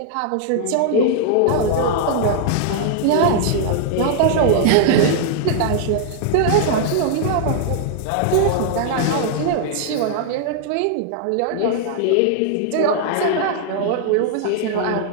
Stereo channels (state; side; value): different; both; correlation -0.01